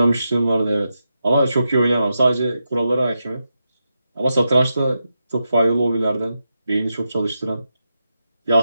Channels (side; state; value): both; inverted; correlation -0.87